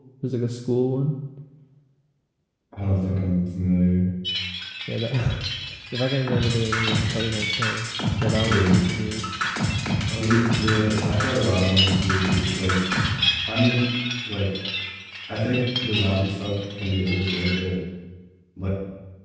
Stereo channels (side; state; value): both; identical; correlation 1.00